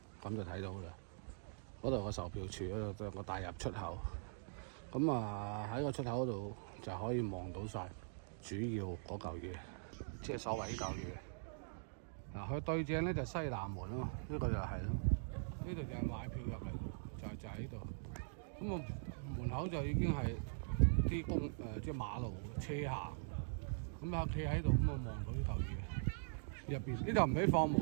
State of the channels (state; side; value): silent; left; digital silence